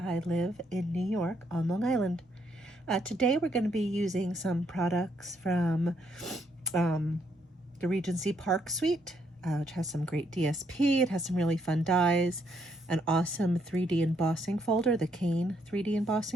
live in New York on Long Island. Today we're going to be using some products from the Regency Park Suite, which has some great DSP. It has some really fun dies, an awesome 3D embossing folder, the Cane 3D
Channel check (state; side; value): normal; both; correlation 0.73